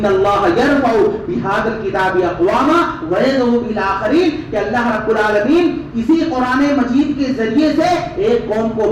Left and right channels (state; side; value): identical; both; correlation 1.00